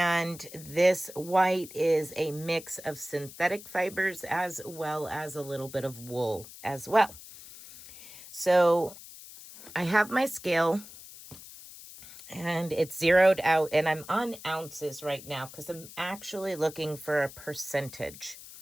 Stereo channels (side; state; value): left; noise; hiss, 16 dB below the sound